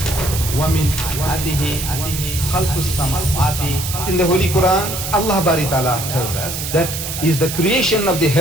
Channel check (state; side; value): noise; right; hiss, 6 dB below the sound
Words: In the Holy Quran, Allah Bari Ta'ala tells us that is the creation of the